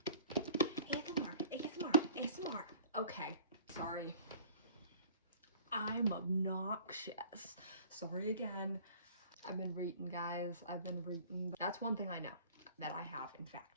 ASMR. Okay, sorry. I'm obnoxious. Sorry again. I've been reading, guys. I've been reading. That's one thing I know that I have, in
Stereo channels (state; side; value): inverted; both; correlation -0.49